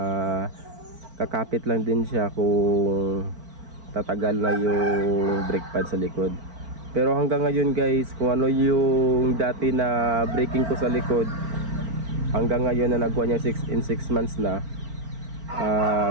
kakapit lang din siya kung tatagal na yung brake pad sa likod. Pero hanggang ngayon guys, kung ano yung dati na braking ko sa likod, hanggang ngayon na nag-1 year in 6 months na,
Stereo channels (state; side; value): late; left; 4.4 ms